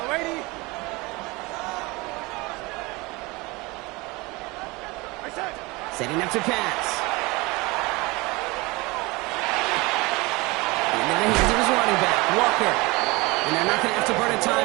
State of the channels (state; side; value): quieter; left; 24.0 dB